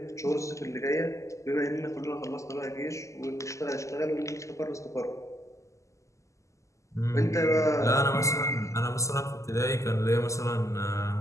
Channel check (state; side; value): late; right; 0.15 ms